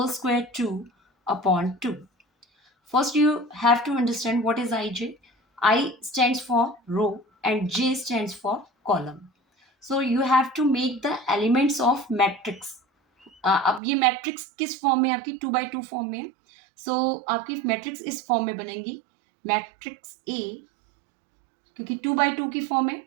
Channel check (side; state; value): left; drops out; at 13.8 s